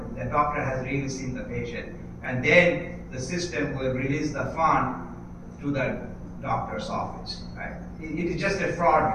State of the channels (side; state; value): both; identical; correlation 1.00